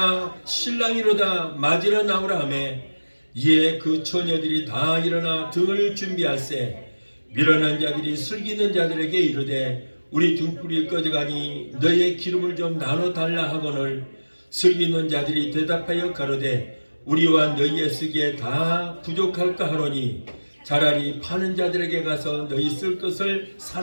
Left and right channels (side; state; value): both; inverted; correlation -1.00